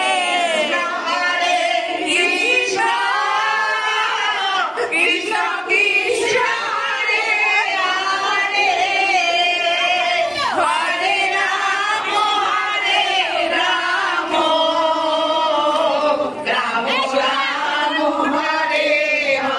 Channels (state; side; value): identical; both; correlation 1.00